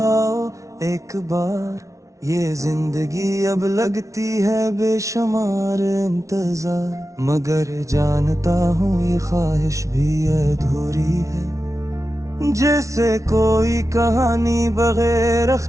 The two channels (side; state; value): left; late; 0.15 ms